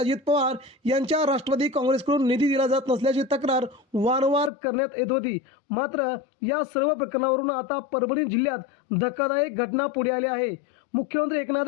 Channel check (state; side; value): drops out; right; at 4.5 s